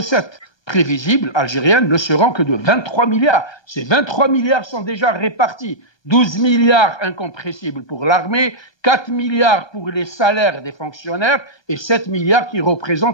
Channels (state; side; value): late; right; 1.3 ms